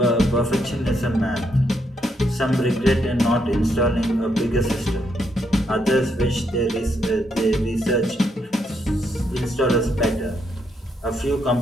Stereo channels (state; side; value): normal; both; correlation 0.77